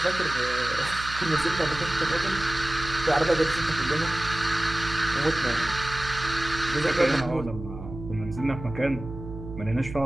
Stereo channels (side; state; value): right; noise; hum, 11 dB below the sound